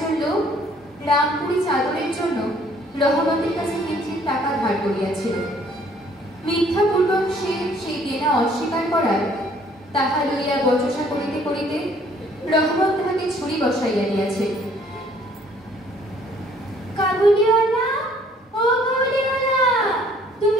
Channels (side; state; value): both; normal; correlation 0.60